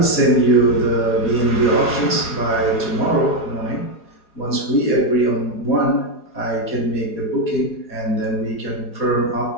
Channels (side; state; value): right; late; 4.8 ms